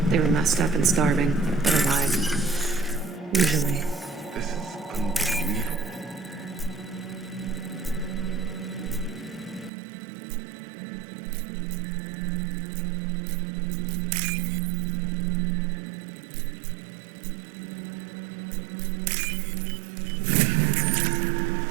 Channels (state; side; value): drops out; left; at 9.7 s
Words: They were messed up and starving, but alive. Usually.